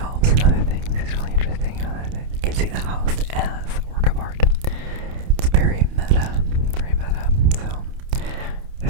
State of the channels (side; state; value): left; late; 29 ms